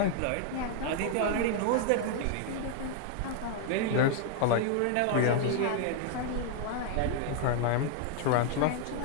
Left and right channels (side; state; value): both; different; correlation 0.00